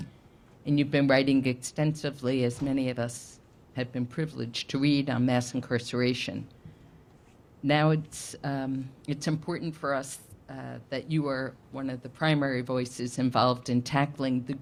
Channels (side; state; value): both; identical; correlation 1.00